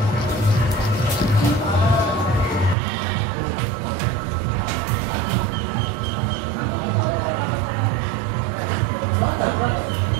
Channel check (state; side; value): drops out; left; at 2.8 s